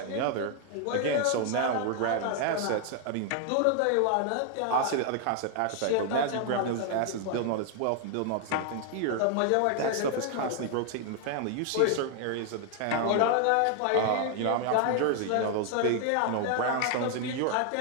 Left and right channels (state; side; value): different; both; correlation 0.00